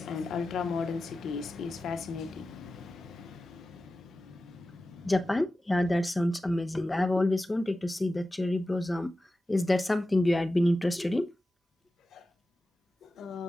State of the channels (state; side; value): normal; both; correlation 0.94